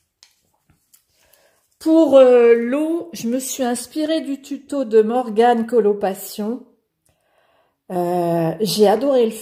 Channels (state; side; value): identical; both; correlation 1.00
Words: pour l'eau, je me suis inspirée du tuto de Morgane Colopassion. J'ai adoré le